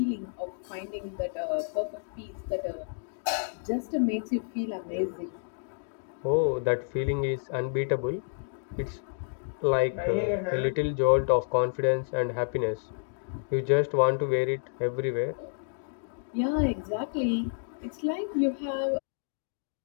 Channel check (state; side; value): silent; right; digital silence